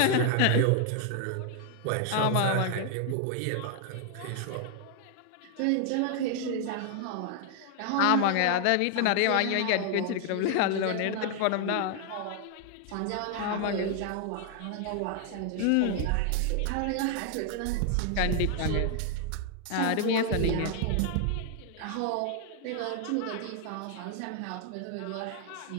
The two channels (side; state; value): both; different; correlation 0.00